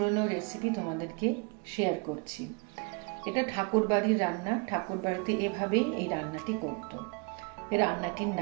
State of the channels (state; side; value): quieter; left; 32.0 dB